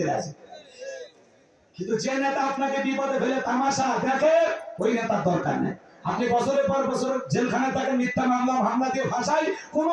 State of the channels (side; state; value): both; identical; correlation 1.00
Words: রাজি। কিন্তু যে নেতা আপনাকে বিপদে ফেলে তামাশা দেখে, ওই নেতার দরকার নেই। আপনি বছরের পর বছর জেলখানায় থাকেন, মিথ্যা মামলা হামলা দিয়ে ভাষায়,